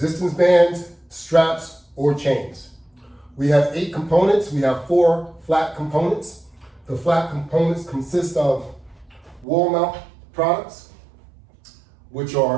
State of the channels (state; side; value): drops out; left; at 9.5 s